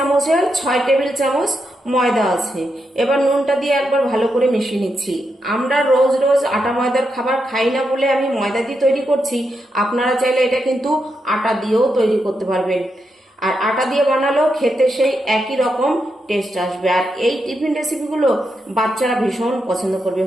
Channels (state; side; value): normal; both; correlation 0.84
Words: 6 টেবিল চামচ ময়দা আছে। এবার নুনটা দিয়ে একবার ভালো করে মিশিয়ে নিচ্ছি। আমরা রোজ রোজ আটা ময়দার খাবার খাই না বলে আমি ময়দা দিয়ে তৈরি করছি। আপনারা চাইলে এটা কিন্তু আটা দিয়েও তৈরি করতে পারবেন, আর আটা দিয়ে বানালেও খেতে সেই একই রকম টেস্ট আসবে। আর এই টিফিন রেসিপিগুলো বাচ্চারা ভীষণ পছন্দ করবে।